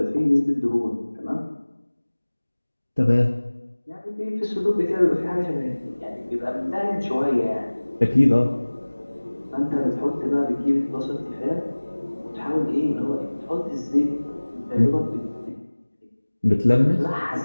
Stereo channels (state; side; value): inverted; both; correlation -1.00